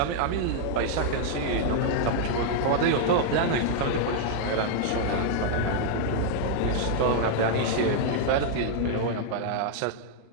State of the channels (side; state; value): both; different; correlation -0.01